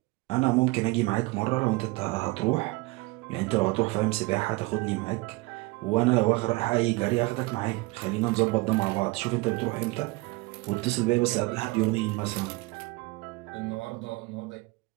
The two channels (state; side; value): quieter; left; 23.6 dB